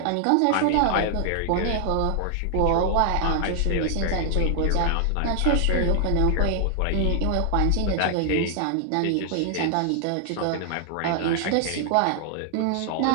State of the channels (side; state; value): both; different; correlation 0.00